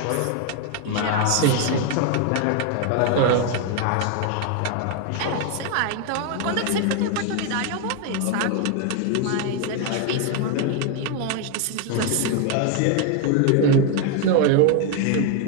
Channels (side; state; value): both; different; correlation 0.01